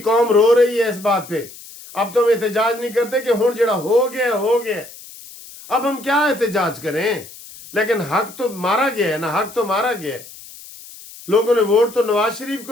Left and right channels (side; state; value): left; noise; hiss, 18 dB below the sound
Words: रो रही है इस बात पे। अब तो हम एहतजाज नहीं करते कि हुण जड़ा हो गया, अब हम क्या एहतजाज करें? लेकिन हक तो मारा गया है ना, हक तो मारा गया है। लोगों ने वोट तो नवाज शरीफ